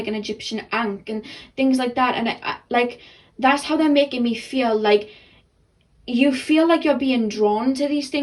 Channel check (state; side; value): identical; both; correlation 1.00